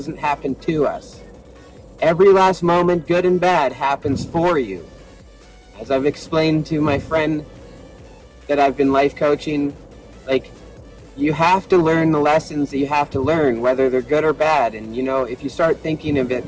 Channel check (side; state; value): both; identical; correlation 1.00